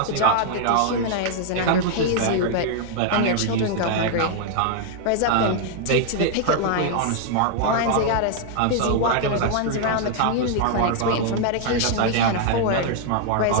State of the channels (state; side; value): different; both; correlation 0.00